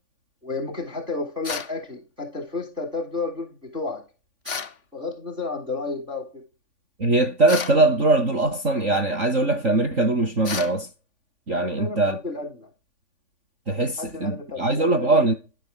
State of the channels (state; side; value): late; left; 3.5 ms